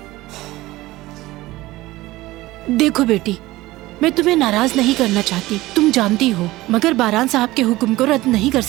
देखो बेटी, मैं तुम्हें नाराज नहीं करना चाहती, तुम जानती हो, मगर बारान साहब के हुक्म को रद्द नहीं कर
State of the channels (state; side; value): quieter; left; 18.3 dB